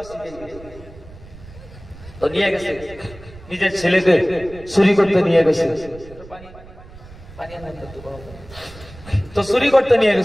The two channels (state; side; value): noise; right; rumble, 18 dB below the sound